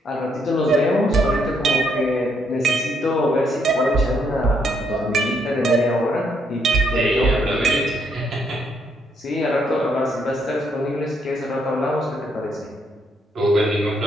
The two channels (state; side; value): normal; both; correlation 0.73